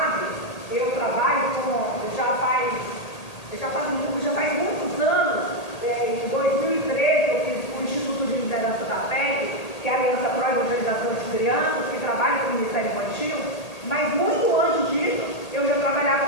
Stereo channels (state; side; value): late; right; 1.8 ms